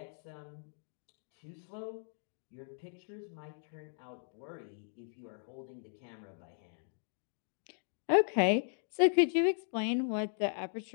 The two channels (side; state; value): right; silent; digital silence